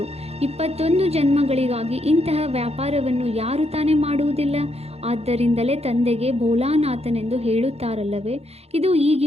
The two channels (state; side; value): late; left; 0.30 ms